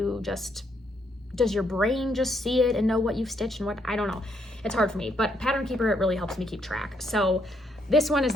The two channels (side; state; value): both; normal; correlation 0.74